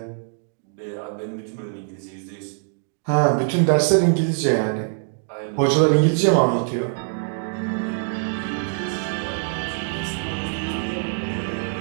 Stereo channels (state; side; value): silent; left; digital silence